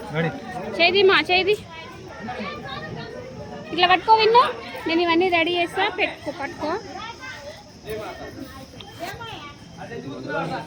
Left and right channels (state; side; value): identical; both; correlation 1.00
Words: చేది ఇట్లా పట్టుకో విన్నా. నేను ఇవన్నీ రెడీ చేస్తా, పట్టుకో.